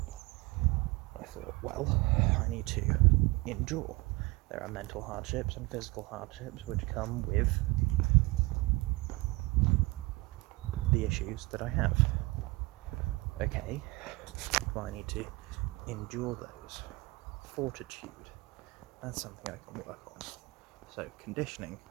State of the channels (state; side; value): quieter; left; 23.1 dB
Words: thought, well, I need to endure. There are mental hardships and physical hardships which come with the issues that I have. Okay, well, I need to endure those. Fortitude, that's something I can work on. So conditioning,